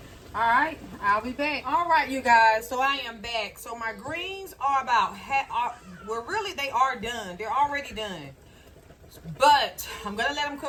All right, I'll be back. All right, you guys, so I am back. So my greens are about, well, really, they are done. They're already done. But I'm going to let them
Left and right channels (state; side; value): identical; both; correlation 1.00